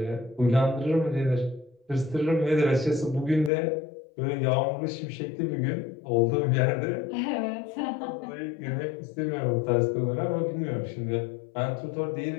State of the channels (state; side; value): drops out; right; at 3.5 s